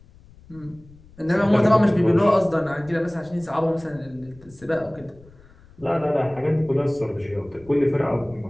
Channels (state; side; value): noise; left; rumble, 25 dB below the sound